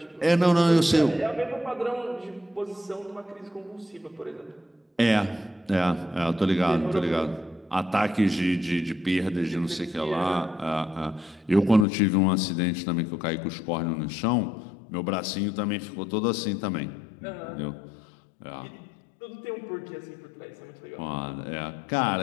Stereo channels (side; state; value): right; drops out; at 11.9 s